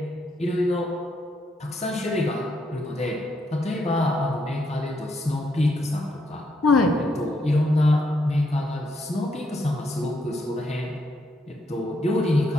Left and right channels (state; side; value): normal; both; correlation 0.77